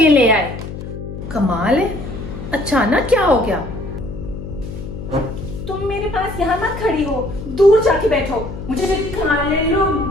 ले आए। कमाल है, अचानक क्या हो गया? तुम मेरे पास यहाँ मत खड़ी हो, दूर जाके बैठो। मुझे खाने लो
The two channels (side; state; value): left; noise; hum, 9 dB below the sound